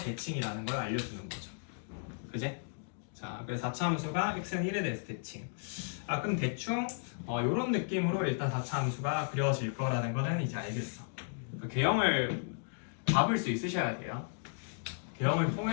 걸 알려주는 거죠. 그제? 자 그래서 4차 함수가 x는 1에 대해서 대칭. 그럼 대충 이런 느낌으로 일단 4차 함수가 그려질 거라는 거는 이제 알겠어. 그 개형을 잡을 수 있으셔야 돼요. 개형을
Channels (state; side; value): silent; right; digital silence